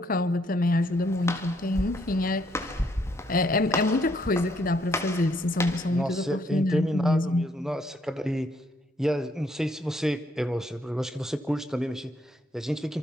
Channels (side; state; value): both; normal; correlation 0.71